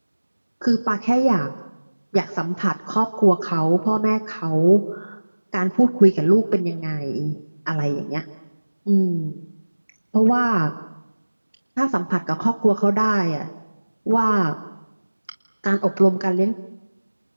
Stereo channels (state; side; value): inverted; both; correlation -1.00